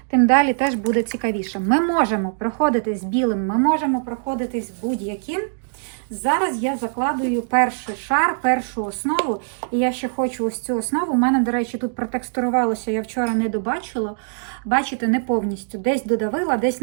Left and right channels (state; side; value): silent; left; digital silence